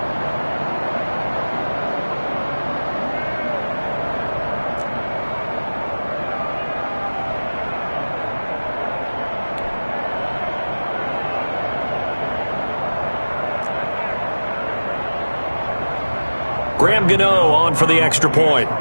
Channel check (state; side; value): inverted; both; correlation -1.00